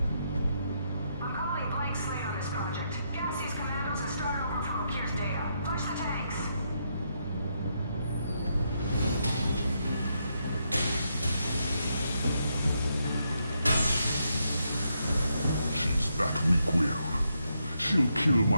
I'm calling blank slate on this project. Gas these commandos and start over from O'Kear's data. Push the tanks. She's that weak-willed. She'll kill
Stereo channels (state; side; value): inverted; both; correlation -0.79